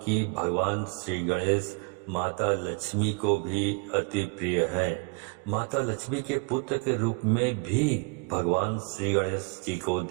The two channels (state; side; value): quieter; left; 32.4 dB